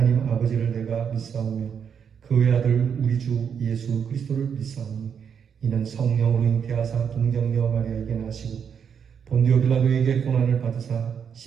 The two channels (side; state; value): left; quieter; 7.3 dB